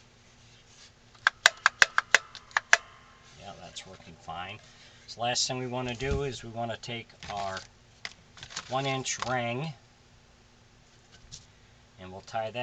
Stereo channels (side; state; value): both; identical; correlation 1.00